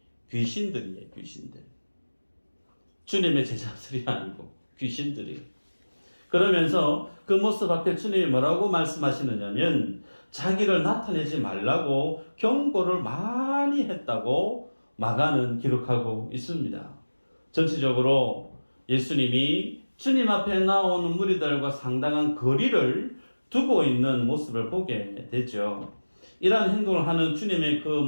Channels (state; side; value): inverted; both; correlation -1.00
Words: 귀신들이에요. 귀신들. 주님의 제자들이 아니고 귀신들이. 그러면서 그 모습 앞에 주님이 뭐라고 말씀하시느냐면 자기를 나타내지 말라고 경고를 많이 했다고 마가는 기록하고 있습니다. 전체적으로 예수님이 주님 앞에 나오는 무리들과 상당한 거리를 두고 있는 모습을 보게 되죠. 이러한 행동을 하는 주님의 그